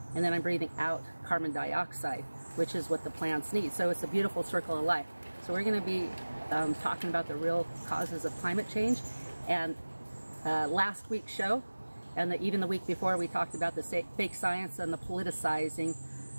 and then I'm breathing out carbon dioxide, which is what the plants need. So it's a beautiful circle of life. So we're going to be talking about the real causes of climate change. And last week's show, and even the week before, we talked about the fake science and the politicizing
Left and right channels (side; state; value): both; inverted; correlation -1.00